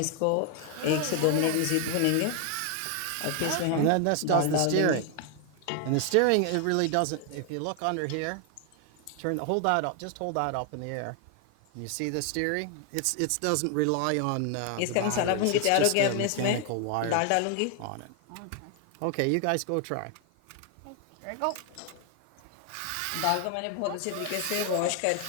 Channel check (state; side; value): different; both; correlation 0.00